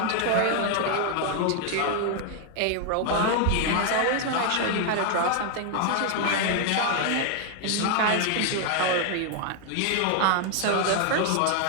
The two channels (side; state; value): both; different; correlation 0.00